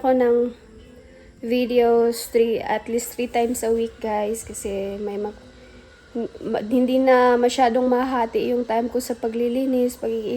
ng videos at least 3 times a week, guys, kasi hindi na masyadong mahati yung time ko sa paglilinis,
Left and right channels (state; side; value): identical; both; correlation 1.00